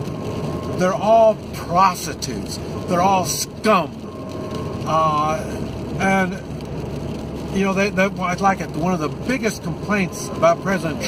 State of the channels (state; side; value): identical; both; correlation 1.00